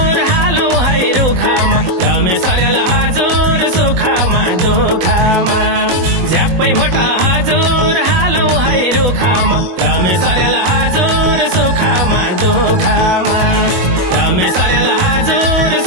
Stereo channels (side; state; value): left; late; 22 ms